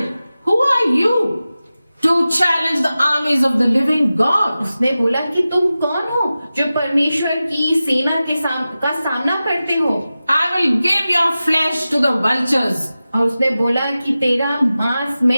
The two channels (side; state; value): both; inverted; correlation -0.95